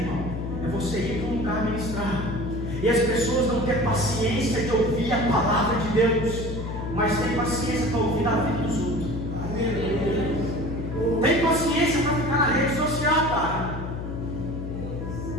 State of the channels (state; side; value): noise; left; hum, 6 dB below the sound